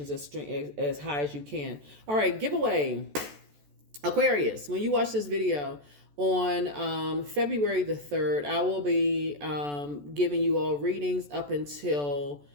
as high as you can. All right, giveaway. Aquarius, when you watch this video on February the 3rd, I will be giving you all readings up until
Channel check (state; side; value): late; left; 14 ms